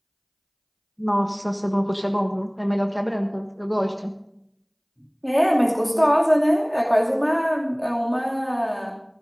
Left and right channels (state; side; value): identical; both; correlation 1.00